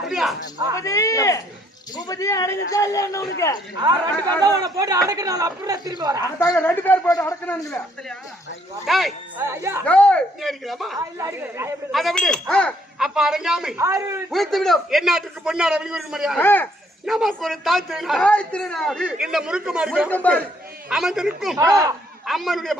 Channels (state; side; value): normal; both; correlation 0.67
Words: பூபதி, பூபதி அடங்குதா இல்ல என்ன உனக்கு? 2 பேர் தான் உன்னை போட்டு அடக்குனால அப்படியே திரும்பி வரேன். அதாங்க 2 பேர் போட்டு அடக்கணுங்களே. டேய் ஐயா, ஏய், நீ அடிக்கலாமா இல்ல அடிக்கிறேன். நான் எப்படி அதை விடு அப்ப அடங்காமை ஆறு உயிர்த்து விடும். எந்நாட்டுக்கு பொன்னாட வெளியூர் மரியாதை ஆ, நமக்கு ஒரு தாய்த்திருநாள் தாய் திருநாடு. இந்த முறுக்குமாரி முறுக்குமாரி. அமர்ந்திருக்கும் அம்மனுடைய